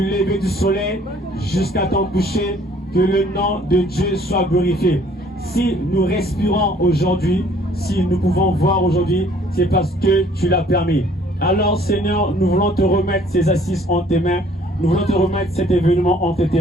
lever du soleil jusqu'à ton coucher, que le nom de Dieu soit glorifié. Si nous respirons aujourd'hui, si nous pouvons voir aujourd'hui, c'est parce que tu l'as permis. Alors Seigneur, nous voulons te remettre ces assises en tes mains. Nous voulons te remettre cet événement entre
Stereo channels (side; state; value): both; normal; correlation 0.58